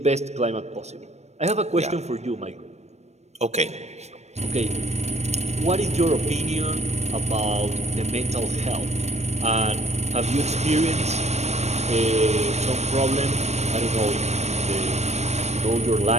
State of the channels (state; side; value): late; left; 0.32 ms